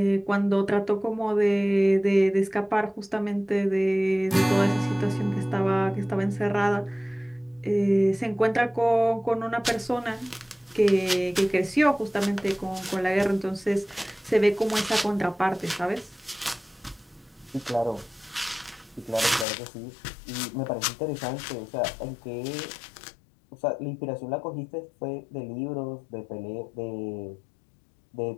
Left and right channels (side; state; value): right; drops out; at 19.5 s